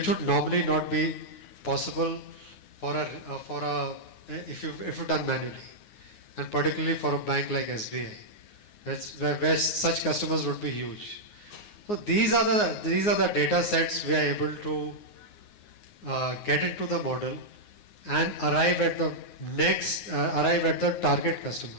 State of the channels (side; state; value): right; late; 9.6 ms